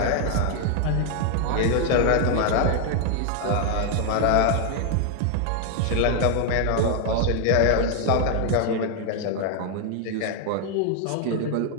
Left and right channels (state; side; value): different; both; correlation 0.00